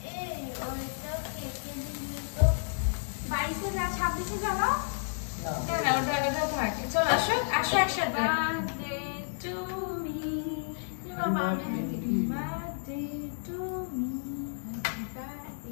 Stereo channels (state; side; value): silent; right; digital silence